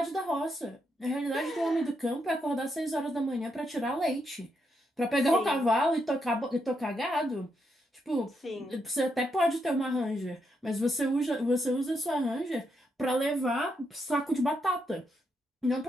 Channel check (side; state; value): both; normal; correlation 0.80